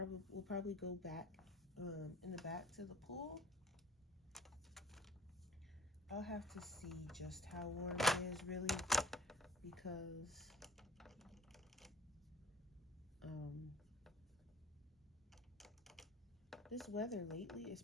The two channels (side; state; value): both; normal; correlation 0.45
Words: probably go back in the back to the pool. I'll have to see just how warm it is really, because this weather lately,